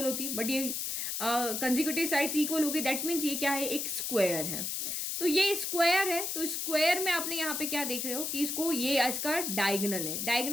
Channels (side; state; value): left; noise; hiss, 2 dB below the sound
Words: होती, बट ये कंसेक्यूटिव साइड्स इक्वल हो गई. दैट मीन्स ये क्या है, एक स्क्वायर है. तो ये स्क्वायर है, तो स्क्वायर में आपने यहाँ पे क्या देख रहे हो कि इसको ये इसका डायगोनल है,